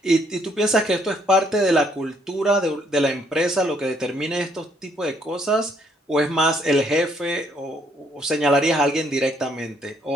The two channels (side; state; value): both; normal; correlation 0.68